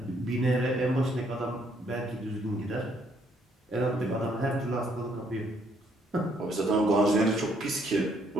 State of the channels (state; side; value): normal; both; correlation 0.69